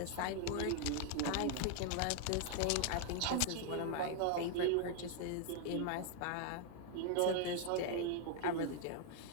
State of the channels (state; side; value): different; both; correlation 0.00